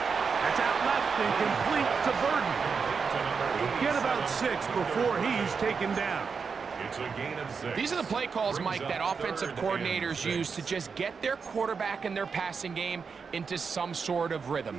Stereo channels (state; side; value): quieter; left; 5.5 dB